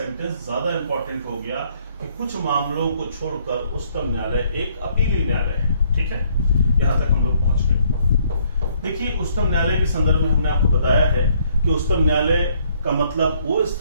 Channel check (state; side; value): inverted; both; correlation -0.66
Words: ज्यादा इंपॉर्टेंट हो गया कि कुछ मामलों को छोड़कर उच्चतम न्यायालय एक अपीली न्यायालय है। ठीक है, यहां तक हम लोग पहुंच गए। देखिए, उच्चतम न्यायालय के संदर्भ में हमने आपको बताया है कि उच्चतम न्यायालय का मतलब वो